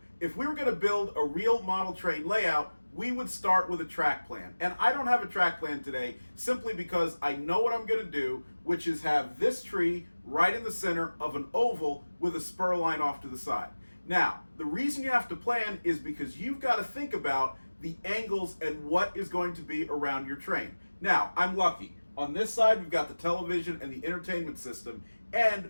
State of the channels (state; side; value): inverted; both; correlation -1.00